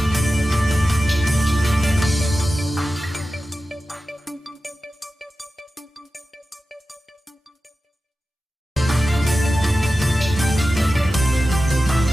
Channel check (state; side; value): normal; both; correlation 0.94